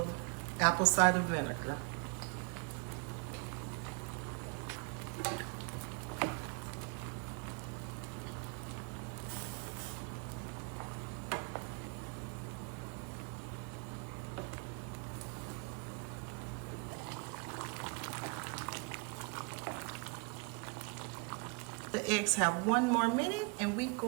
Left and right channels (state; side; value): quieter; left; 32.3 dB